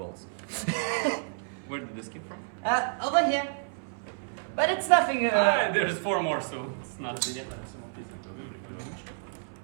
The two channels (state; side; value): silent; left; 58 dB below the other